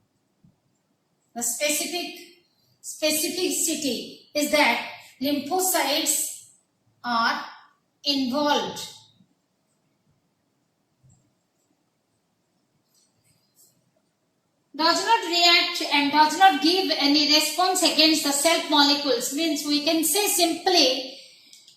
The specificity is that lymphocytes are involved. Does not react and does not give any response against the self molecules, means we can say simply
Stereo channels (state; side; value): identical; both; correlation 1.00